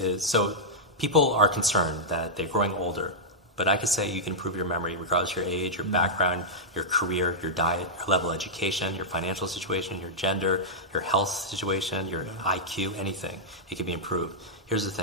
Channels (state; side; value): normal; both; correlation -0.09